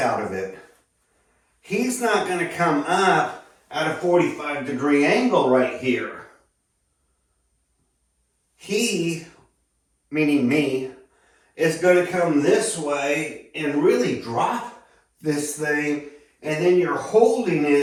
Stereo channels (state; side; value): identical; both; correlation 1.00